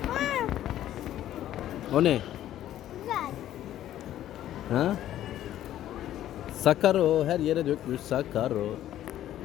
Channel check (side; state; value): right; quieter; 12.4 dB